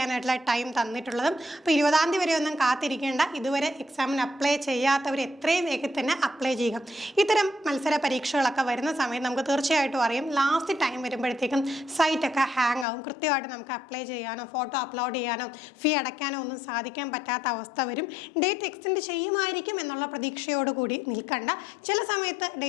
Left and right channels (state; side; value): drops out; right; at 12.9 s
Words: ടൈം തന്നിട്ടുള്ളത്. അപ്പോൾ 20-ാം തീയതി വരെ ഒന്നും കാത്തിരിക്കേണ്ട. ഇതുവരെ എക്സാമിന് അപ്ലൈ ചെയ്യാത്തവർ എത്രയും വേഗത്തിൽ തന്നെ അപ്ലൈ ചെയ്യുക. ഇത്തരം മത്സര പരീക്ഷകളൊക്കെ വരുന്ന സമയത്ത് നമുക്ക് തീർച്ചയായിട്ടും അറിയാം ലാസ്റ്റ് ടൈം വരുമ്പോഴത്തേക്കും സൈറ്റൊക്കെ ഹാങ് ആവും. കൃത്യമായിട്ട് നമുക്ക് അപ്ലൈ ചെയ്യാനോ ഫോട്ടോ അപ്ലോഡ് ചെയ്യാനോ ഫീ അടയ്ക്കാനോ ഒന്നും സാധിക്കാൻ പറ്റാത്ത അവസ്ഥ വരും. ഡേറ്റ് എക്സ്റ്റെൻഡ് ചെയ്യുമായിരിക്കും എന്നുള്ള പ്രതീക്ഷയോടുകൂടി നിൽക്കണ്ട. ചില സമയത്ത്